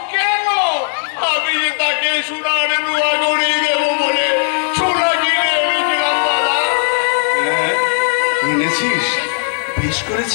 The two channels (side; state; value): right; silent; digital silence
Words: কেন? আমি যে তাকে সোনার রুয়া গড়িয়ে দেবো বলে সোনা কিনে এনেছিলাম দাদা। হ্যাঁ, এনেছিস, বেশ